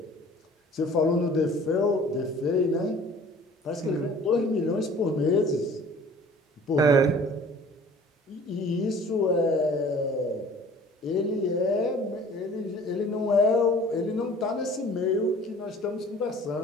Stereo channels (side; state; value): both; normal; correlation 0.49